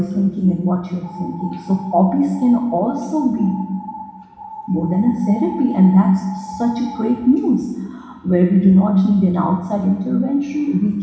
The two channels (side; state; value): both; identical; correlation 1.00